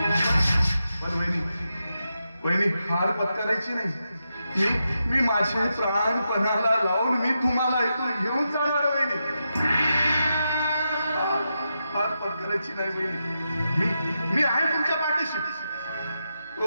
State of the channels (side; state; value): both; inverted; correlation -0.87